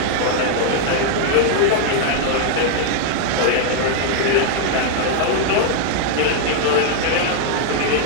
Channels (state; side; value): different; both; correlation -0.01